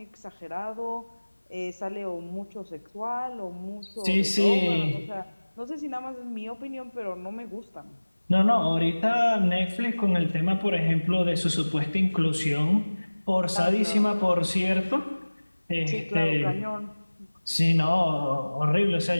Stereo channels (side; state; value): both; inverted; correlation -1.00